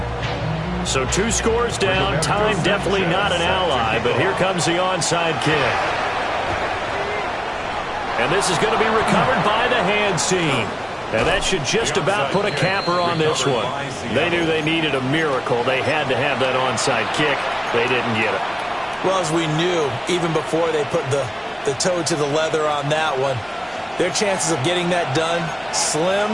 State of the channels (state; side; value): identical; both; correlation 1.00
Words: So 2 scores down. Time definitely not an ally. But here comes the onside kick. And this is going to be recovered by the hands team. And that should just about put a capper on this one. They knew they needed a miracle. They had to have that onside kick. They didn't get it. Well, as we knew, even before they put the toe to the leather on that one, their chances of getting that done, slim